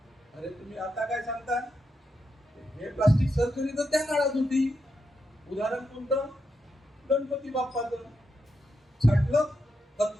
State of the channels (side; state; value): both; normal; correlation 0.84